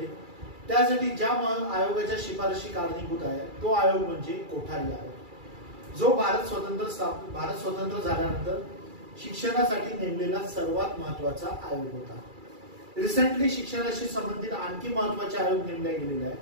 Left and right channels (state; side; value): late; left; 2.3 ms